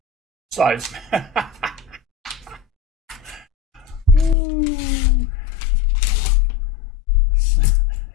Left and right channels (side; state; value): right; drops out; at 4.4 s